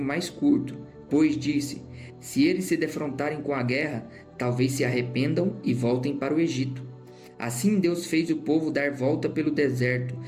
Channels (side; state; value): both; identical; correlation 1.00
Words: mais curto, pois disse: se eles se defrontarem com a guerra, talvez se arrependam e voltem para o Egito. Assim Deus fez o povo dar volta pelo deserto,